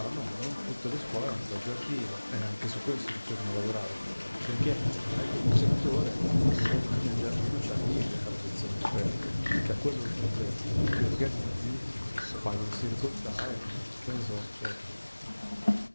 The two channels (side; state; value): both; inverted; correlation -1.00